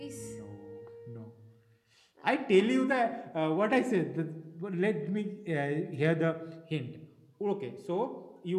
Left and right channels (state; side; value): identical; both; correlation 1.00